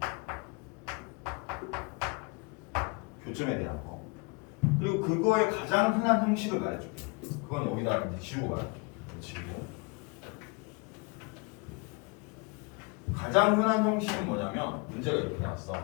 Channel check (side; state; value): right; quieter; 30.1 dB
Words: 교점에 대한 거. 그리고 그거의 가장 흔한 형식을 말해줄게. 그건 여기다 이제 지우고 말할게. 지우고. 가장 흔한 형식은 뭐냐면 문제가 이렇게 나왔어.